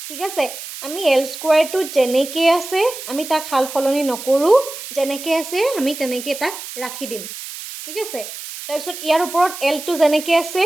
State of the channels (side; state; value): right; noise; hiss, 11 dB below the sound